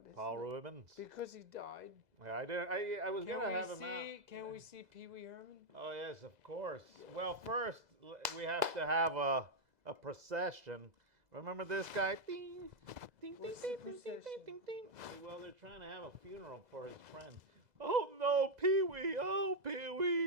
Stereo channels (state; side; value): late; left; 2.0 ms